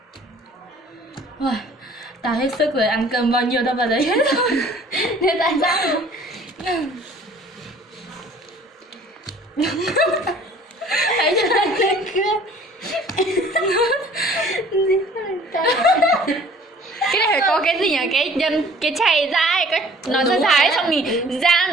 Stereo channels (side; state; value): both; normal; correlation 0.52